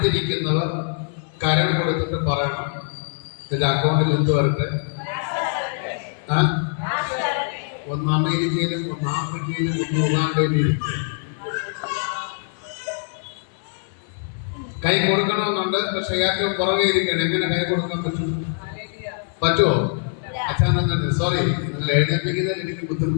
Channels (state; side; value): silent; right; digital silence